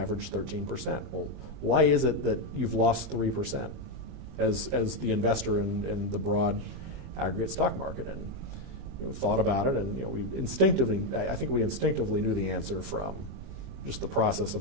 13%. Well, why is it that you've lost 3% as the investor in the broad aggregate stock market? And thought about it, and I think we instinctively knew the answer from just the process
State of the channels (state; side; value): late; left; 20 ms